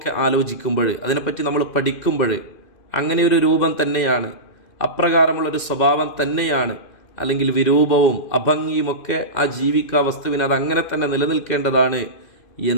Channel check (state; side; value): late; right; 2.5 ms